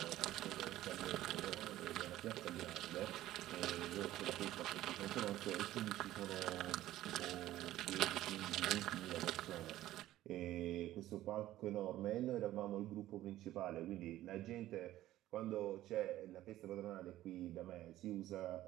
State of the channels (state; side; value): quieter; left; 14.5 dB